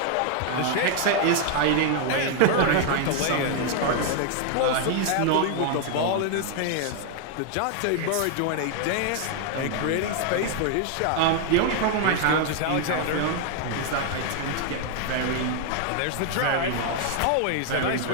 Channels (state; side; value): different; both; correlation 0.00